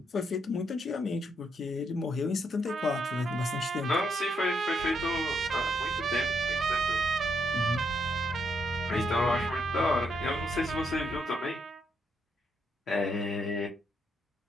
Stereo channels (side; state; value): both; normal; correlation 0.77